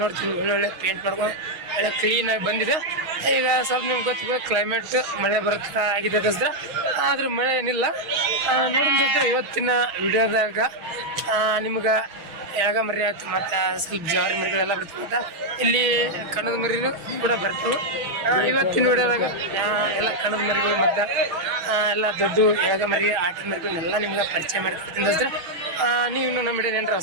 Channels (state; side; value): late; left; 6.2 ms